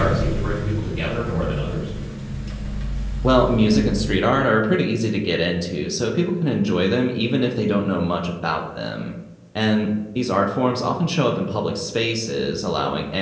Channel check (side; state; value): both; identical; correlation 1.00